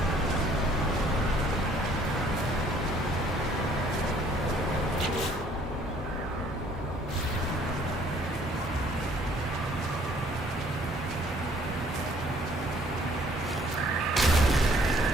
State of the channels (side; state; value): both; normal; correlation 0.60